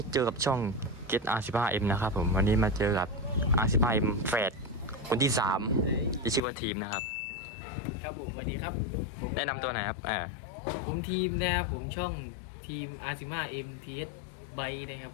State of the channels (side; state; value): right; drops out; at 6.4 s